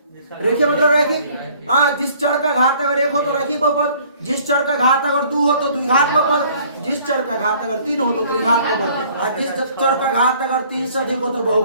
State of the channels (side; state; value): both; inverted; correlation -0.56